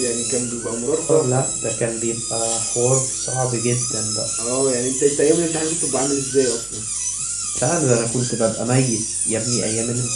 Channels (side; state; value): right; noise; hum, 22 dB below the sound